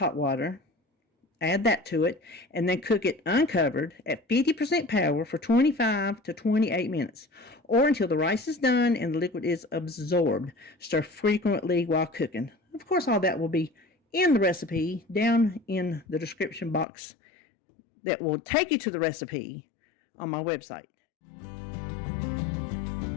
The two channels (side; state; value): right; drops out; at 16.9 s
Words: water. Add that to it, and then cook it uncovered at 50% power for 25 to 28 minutes, or until the rice is done and the liquid is absorbed. Stir frequently while cooking. Of course, all that will be in the recipe down in the description box that will take you to the recipe on my website.